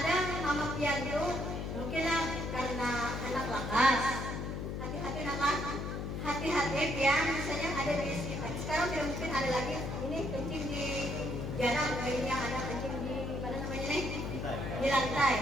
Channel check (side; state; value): left; noise; hum, 4 dB below the sound